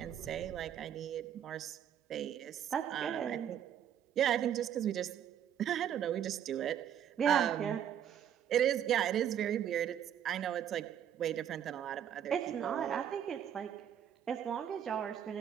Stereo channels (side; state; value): left; quieter; 9.6 dB